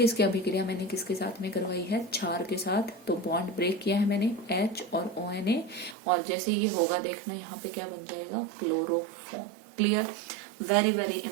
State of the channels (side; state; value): left; drops out; at 6.0 s